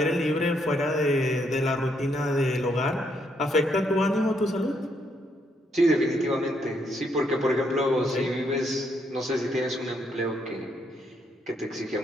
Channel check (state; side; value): normal; both; correlation 0.74